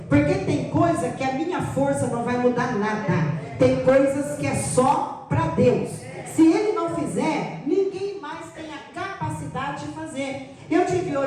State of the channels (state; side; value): identical; both; correlation 1.00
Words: Porque tem coisa que a minha força não vai mudar nada. Tem coisas que é só para Deus. Se Ele não fizer, ninguém mais tem a capacidade de fazer. Eu estive